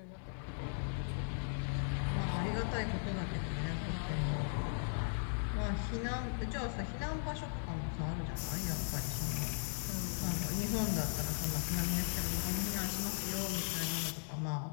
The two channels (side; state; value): right; silent; digital silence